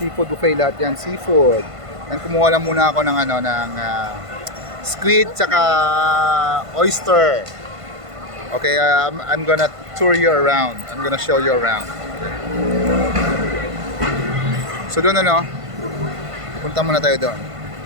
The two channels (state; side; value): late; left; 1.5 ms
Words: buffet lahat yan, seafood. Yan, kumuha lang muna ako ng squid tsaka oyster. Okay, I'm gonna tour you around. I'm gonna show you around. So doon punta muna tayo doon.